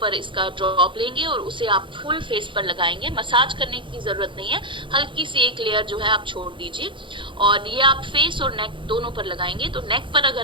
इसका ड्रॉप लेंगे और उसे आप फुल फेस पर लगाएंगे। मसाज करने की जरूरत नहीं है, हल्की सी एक लेयर जो है आप छोड़ दीजिए और ये आप फेस और नेक दोनों पर लगाएंगे। तो नेक पर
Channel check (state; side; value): late; left; 0.24 ms